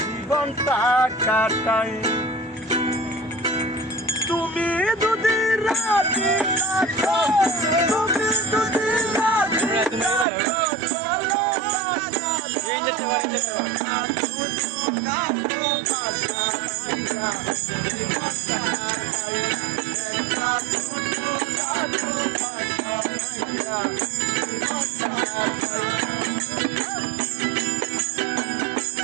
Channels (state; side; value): drops out; left; at 10.2 s